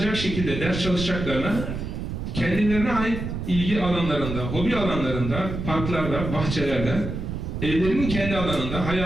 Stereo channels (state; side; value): noise; right; rumble, 5 dB below the sound